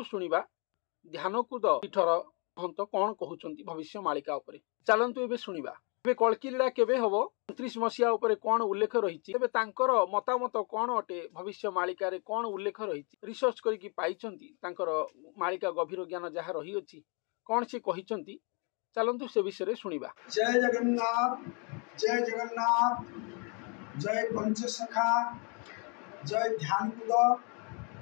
शुणिबा ध्यानकूद पीठर महंत कौन कहउचंती भविष्य मालिका उपरे। चलंतु एबे शुणिबा। एबे कल्कीलीला केबे हबो 29 मसिया उपरे कौन उल्लेख रहिछि। तेबे तांकर मतामत कौन अटे भविष्य मालिका रे कौन उल्लेख रहिछि रिसर्च करिकि पाइचंती। तांकर मालिका गभीर ज्ञान जहा रही अछि कौन से कहिचंती चलंतु से विषय शुणिबा। जय जगन्नाथ, जय जगन्नाथ, जय पंचसखा, जय ध्यानकूद,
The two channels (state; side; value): quieter; right; 35.3 dB